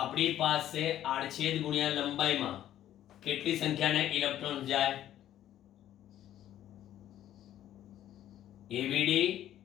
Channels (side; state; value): right; quieter; 12.1 dB